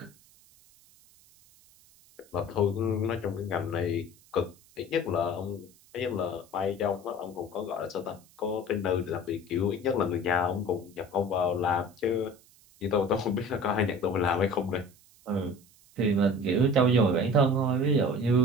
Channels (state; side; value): noise; right; hiss, 28 dB below the sound